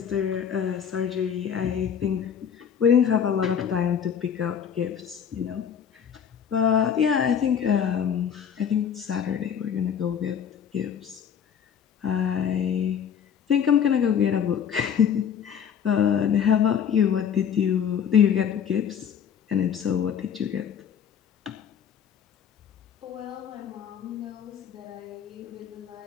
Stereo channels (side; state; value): right; quieter; 8.1 dB